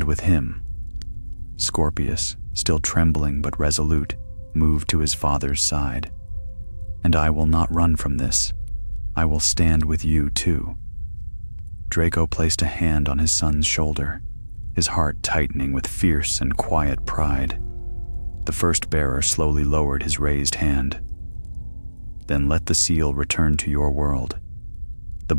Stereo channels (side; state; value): both; inverted; correlation -1.00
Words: with him. Scorpius, still trembling but resolute, moved to his father's side. And I will not run from this. I will stand with you too. Draco placed a hand on his son's shoulder, his heart tightening with fierce and quiet pride. The first bearer slowly lowered his raised hand. Then let the seal return to your world. The